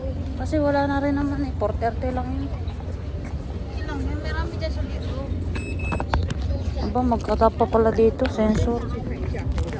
Kasi wala na rin naman eh. 4:30 lang yun. Ilang yan, marami dyan sa dito. Aba, magkatap pa pala dito. Sensor.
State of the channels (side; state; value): both; identical; correlation 1.00